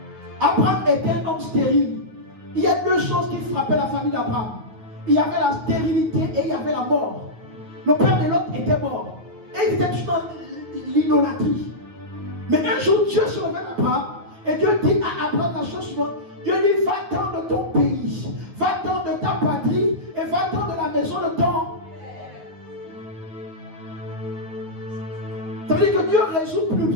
Abraham était un homme stérile. Il y a 2 choses qui frappaient la famille d'Abraham. Il y avait la stérilité et il y avait la mort. Le père de l'autre était mort. Et il était tout dans l'idolâtrie. Mais un jour, Dieu se révèle à Abraham. Et Dieu dit à Abraham la chose suivante. Dieu dit, va-t'en de ton pays. Va-t'en de ta patrie. Et va-t'en de la maison de ton... Ça veut dire que Dieu résout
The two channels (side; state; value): left; late; 9.4 ms